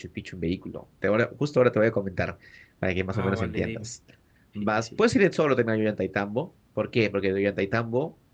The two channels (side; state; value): both; identical; correlation 1.00